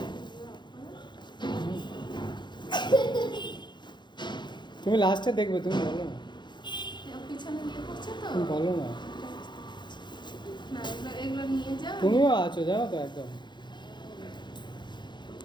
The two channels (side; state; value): right; late; 0.22 ms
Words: অফ করো। তুমি লাস্টে দেখবে, তুমি বলো না, পিছনে নিয়ে পড়ছে তো। তুমি বলো না। না, এগুলো এগুলো নিয়ে যাও। তুমিও আছো জানো তো একদম।